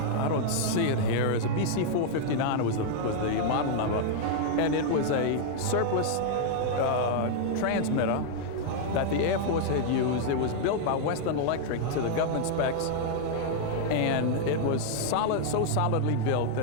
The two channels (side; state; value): both; different; correlation -0.01